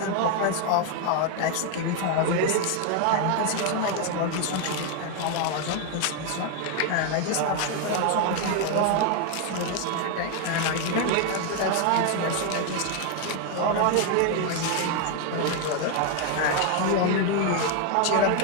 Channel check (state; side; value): different; both; correlation 0.01